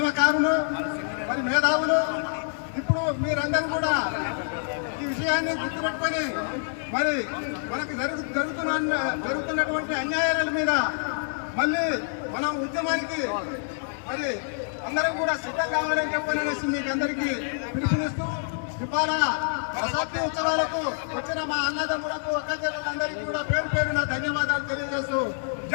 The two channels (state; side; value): silent; right; digital silence